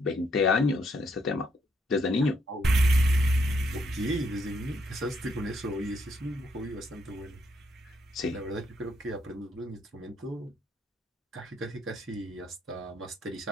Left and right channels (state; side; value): normal; both; correlation 0.73